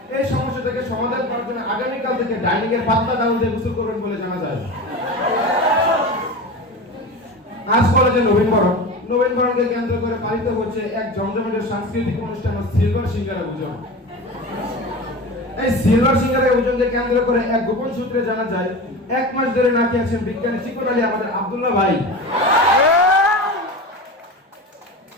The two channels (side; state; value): both; normal; correlation 0.29